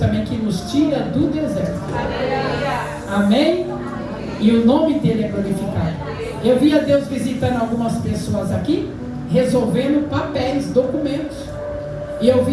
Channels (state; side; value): identical; both; correlation 1.00